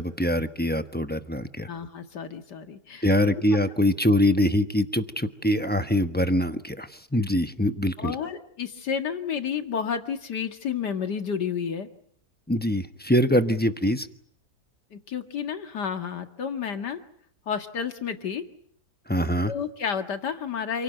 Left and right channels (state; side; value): normal; both; correlation 0.48